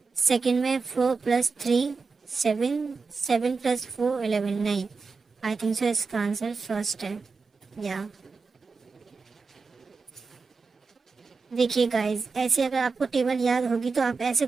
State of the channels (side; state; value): left; quieter; 4.6 dB